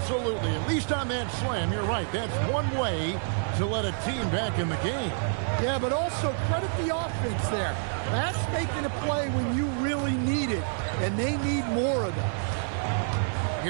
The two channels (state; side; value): silent; left; 59 dB below the other